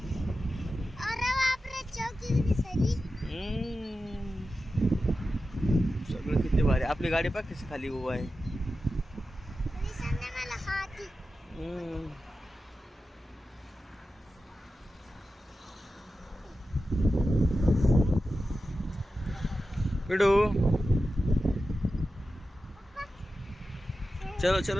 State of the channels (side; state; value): both; normal; correlation 0.92